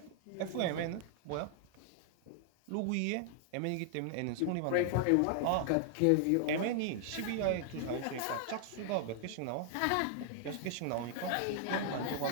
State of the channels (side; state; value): both; different; correlation 0.00